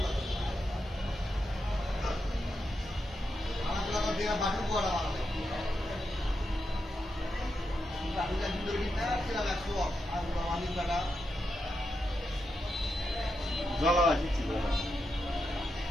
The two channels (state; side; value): normal; both; correlation 0.85